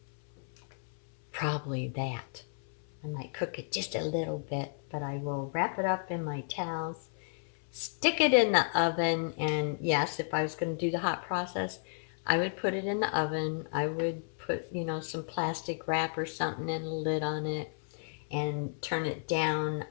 probably that. I might cook it just a little bit, but I will wrap it up in my towels, stick it in the oven, and yes, if I was going to do the hot process, I would put it in the oven. I would put, some plastic wrap or something and a lid on it, and turn it down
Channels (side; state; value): right; silent; 56 dB below the other